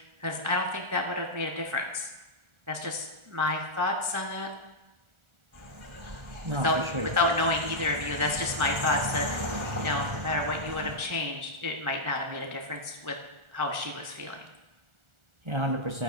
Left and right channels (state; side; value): late; left; 1.4 ms